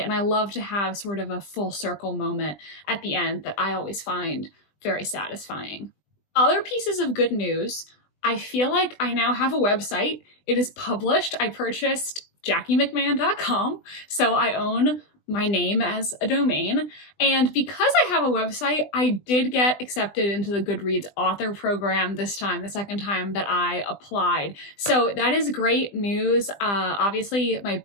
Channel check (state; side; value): late; right; 20 ms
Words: and I love to have sort of a full circle moment at the end that I always find very satisfying. Other pieces of good news, I feel like I now have a website. It is published. I purchased JackieMcMahon.com, so I own my name as a domain. And because I have a website, I did get accepted into the Goodreads author program this time, the second time that I applied. So that is great news. Obviously, my